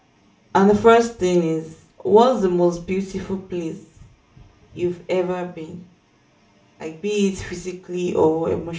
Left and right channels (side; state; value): both; identical; correlation 1.00